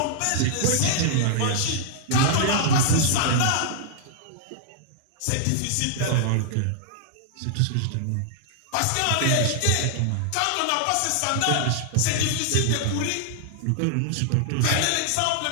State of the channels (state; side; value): different; both; correlation -0.01